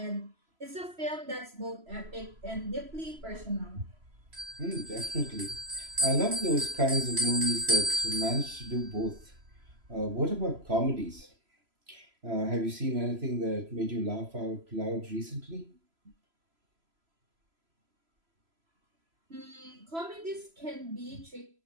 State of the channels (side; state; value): left; late; 3.0 ms